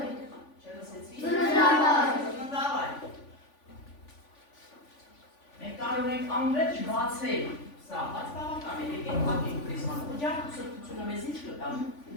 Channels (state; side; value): late; right; 3.5 ms